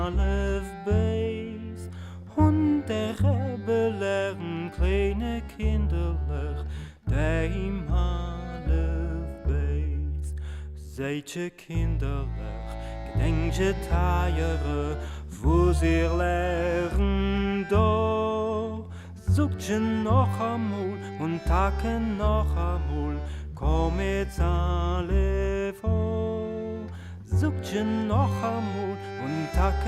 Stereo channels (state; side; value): identical; both; correlation 1.00